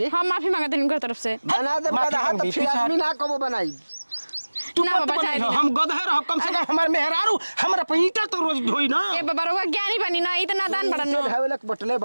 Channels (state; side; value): inverted; both; correlation -1.00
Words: हम माफी मांगते हैं उनकर तरफ से बना दे माफी गदहा तो मांगी, फिर पीछे आदमी ना कबो बनाई। तू ना मत बाबा, बनी जाए हो, दी हम गधे रहो कम से कम हमार मेहरारू हमरा पे ईंटा तो रोज ढोई ना। ए बाबा रउआ ज्ञानी बनी ना इतना दान बड़न नो धावेलक बटले